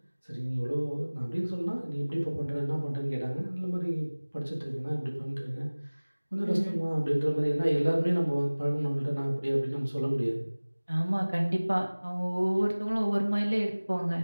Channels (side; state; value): both; inverted; correlation -1.00